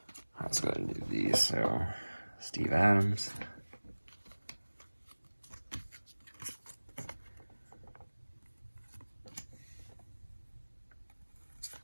Let's go ahead and do these. So, Steve Adams.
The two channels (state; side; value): inverted; both; correlation -1.00